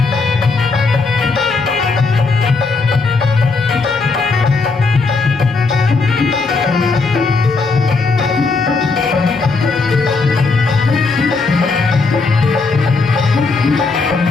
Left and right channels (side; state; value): right; quieter; 4.1 dB